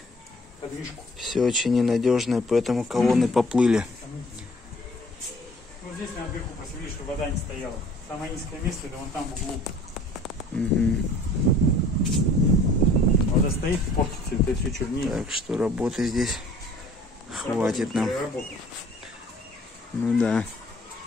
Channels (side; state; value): both; normal; correlation 0.53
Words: подвижку. все очень ненадежное, поэтому колонны поплыли. Вот здесь наверху просвели, чтобы вода не стояла. Самое низкое место это вон там в углу. Вода стоит и портится, это все чернее. Так что работы здесь хватит нам. Ну да.